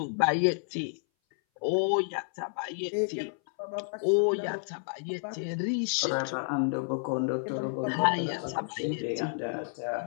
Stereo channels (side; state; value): right; silent; 58 dB below the other